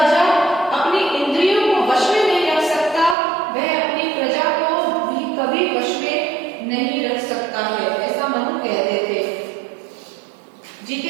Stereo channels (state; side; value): drops out; left; at 3.2 s